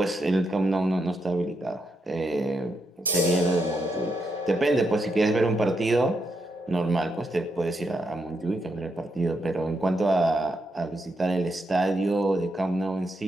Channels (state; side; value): normal; both; correlation 0.82